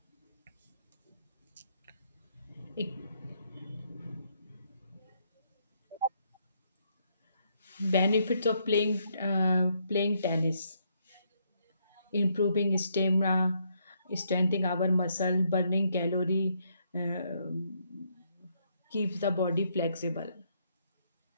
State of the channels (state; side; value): inverted; both; correlation -0.73